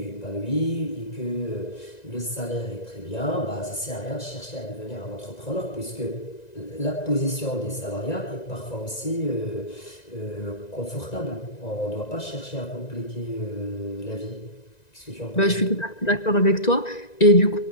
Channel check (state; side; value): late; right; 1.9 ms